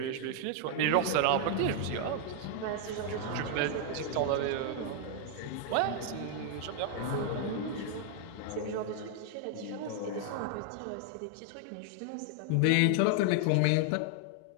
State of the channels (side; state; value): both; different; correlation 0.00